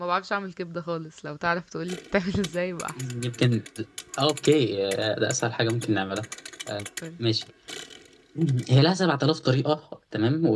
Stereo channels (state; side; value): identical; both; correlation 1.00